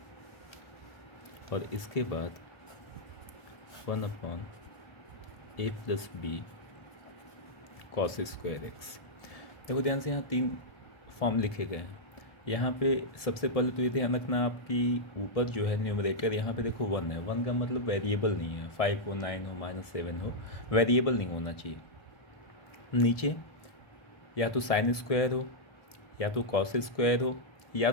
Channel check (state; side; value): late; right; 1.7 ms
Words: और इसके बाद 1/a plus b cos square x. देखो ध्यान से, यहाँ 3 फॉर्म लिखे गए हैं। यहाँ पे सबसे पहले तो ये ध्यान रखना, आपकी ऊपर जो है न्यूमरेटर, यहाँ पे देखो 1 है। 1 का मतलब वेरिएबल नहीं है, 5 हो, 9 हो, -7 हो, वेरिएबल नहीं होना चाहिए। नीचे या तो साइन स्क्वायर हो, या तो कॉस स्क्वायर हो, या